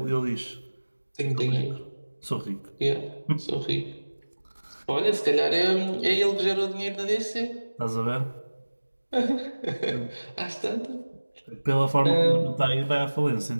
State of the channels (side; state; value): both; inverted; correlation -1.00